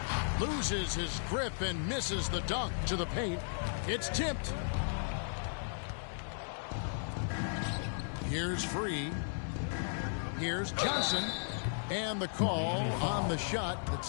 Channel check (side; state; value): right; silent; digital silence